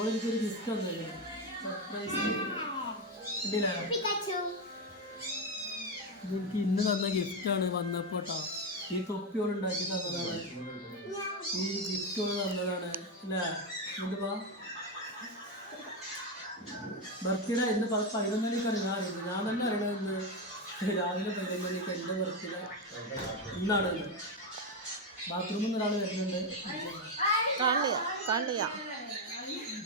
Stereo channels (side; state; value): both; normal; correlation 0.09